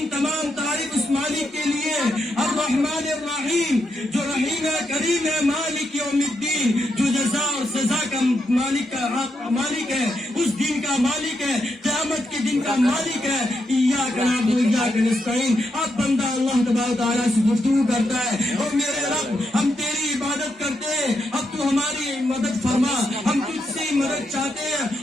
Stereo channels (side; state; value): both; normal; correlation 0.82